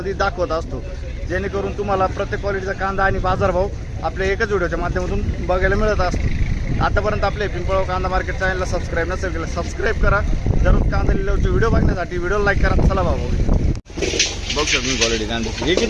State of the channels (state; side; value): identical; both; correlation 1.00